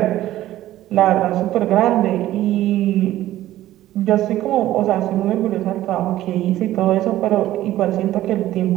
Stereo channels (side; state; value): left; quieter; 14.3 dB